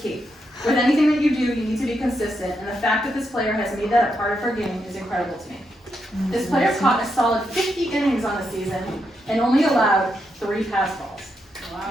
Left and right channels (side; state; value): both; normal; correlation 0.82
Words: key. With anything that you do, you need to be consistent, and the fact that this player has made that a part of her game is incredible to me. This player caught a solid 50 innings on the season and only allowed 3 pass balls.